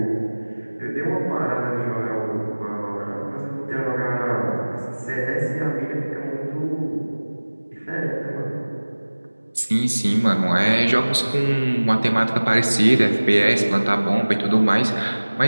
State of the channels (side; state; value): both; inverted; correlation -1.00